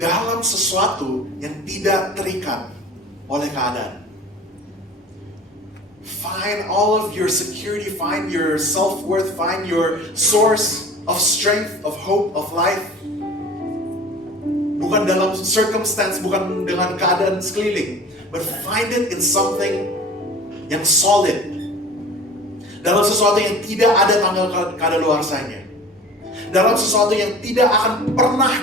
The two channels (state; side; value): normal; both; correlation 0.42